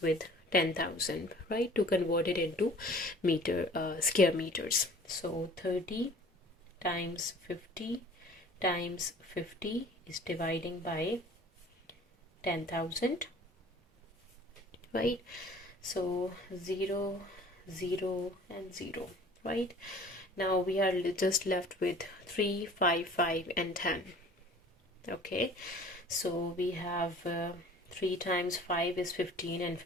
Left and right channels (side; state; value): both; normal; correlation 0.48